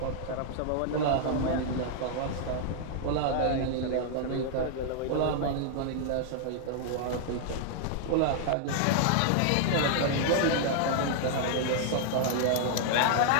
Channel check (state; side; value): different; both; correlation -0.01